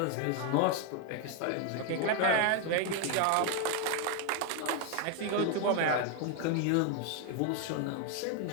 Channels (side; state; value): both; different; correlation 0.01